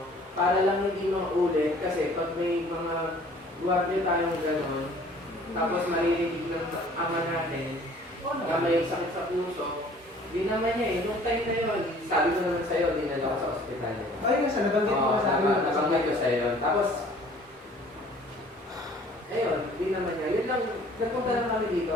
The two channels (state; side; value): normal; both; correlation 0.52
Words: Para lang hindi maulit. Kasi pag may mga guwardiya tayong gano'n, tapos maririnig ng ama natin, na may sakit sa puso, di naman niya eh. Nung time na yun, sabi ko naman sa'yo, dinala ko sa ospital. Ay, nga sa nabanggit Oo, mo sa akin. nabanggit ko sa'yo. Tapos, ayun, di naman niya. Yun lang, nagpunta lang kami dito.